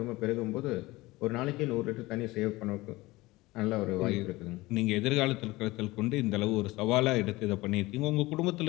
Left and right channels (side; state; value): right; quieter; 20.3 dB